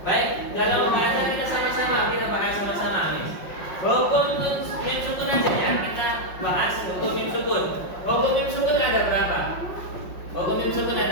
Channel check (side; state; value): right; late; 5.5 ms